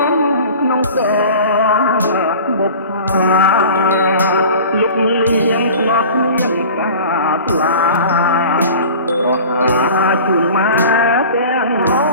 ក្នុងកបុប្ផាលុកលៀងស្នប់មានការស្លាក៏ហាជូនមកទាំង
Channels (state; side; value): inverted; both; correlation -0.40